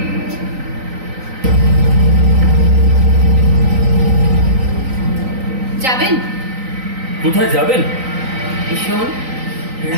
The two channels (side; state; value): left; late; 3.9 ms